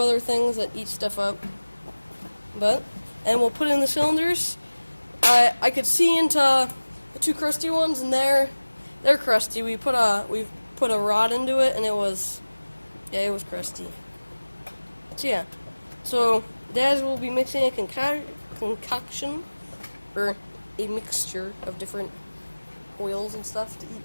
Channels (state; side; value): inverted; both; correlation -1.00